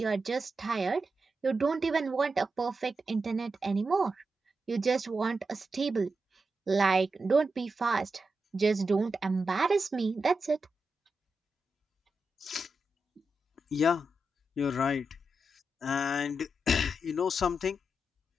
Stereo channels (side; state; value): both; normal; correlation 0.88